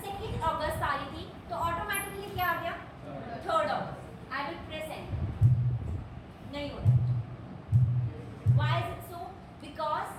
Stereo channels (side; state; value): both; identical; correlation 1.00